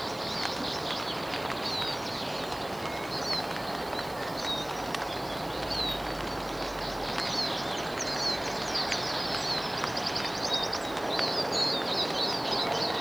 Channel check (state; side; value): noise; right; hiss, 21 dB below the sound